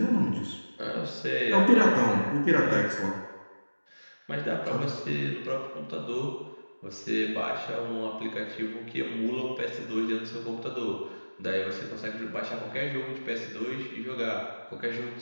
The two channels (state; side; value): inverted; both; correlation -1.00